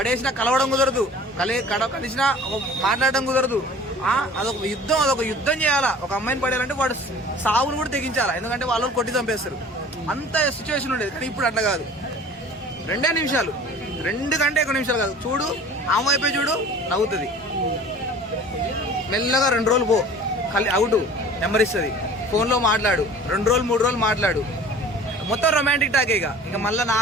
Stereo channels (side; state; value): both; normal; correlation 0.44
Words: కలవడం కుదరదు, కలిసినా మాట్లాడడం కుదరదు. అదొక యుద్ధం చేయాలా. ఒక అమ్మాయిని పడేయాలంటే వాడు సావును కూడా తెగించాలా, ఎందుకంటే వాళ్ళు కొట్టి చంపేస్తారు. అంత సిచ్యువేషన్ ఉండేది. కానీ ఇప్పుడు అట్లా కాదు, 2 నిమిషాలు, 2 కంటే ఎక్కువ నిమిషాలు కాదు. చూడు ఆమె అయిపోయి చూడు, నవ్వుతుంది. మెల్లగా 2 రోజులు పో, అవుట్ నెంబర్ ఇస్తుంది, ఫోన్లో మాట్లాడు, 2 రోజులు 3 రోజులు మాట్లాడు, మొత్తం రొమాంటిక్ టాక్. ఇక మళ్ళీ